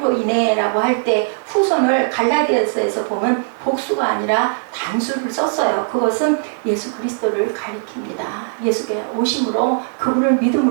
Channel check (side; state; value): left; silent; digital silence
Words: 인해 라고 할 때 후손을 갈라디아서에서 보면 복수가 아니라 단수를 썼어요. 그것은 예수 그리스도를 가리킵니다. 예수께 오심으로 그분을